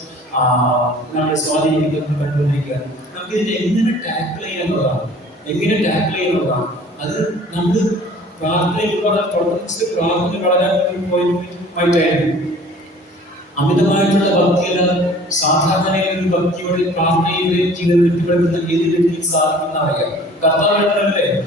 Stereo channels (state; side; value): normal; both; correlation 0.49